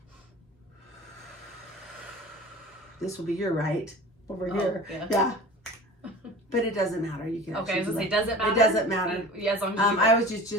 This will be your right over here. Yeah. But it doesn't matter. You can. Okay, I was gonna say, does it matter? It doesn't matter. Yeah, as long as you I always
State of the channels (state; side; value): normal; both; correlation 0.38